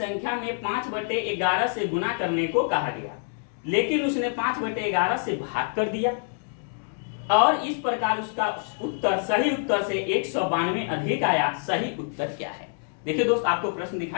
में 5/11 से गुना करने को कहा गया, लेकिन उसने 5/11 से भाग कर दिया और इस प्रकार उसका उत्तर सही उत्तर से 192 अधिक आया। सही उत्तर क्या है? देखिए दोस्त, आपको प्रश्न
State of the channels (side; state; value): right; silent; 61 dB below the other